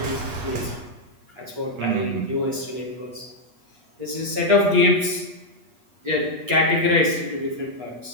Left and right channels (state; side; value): late; left; 8.4 ms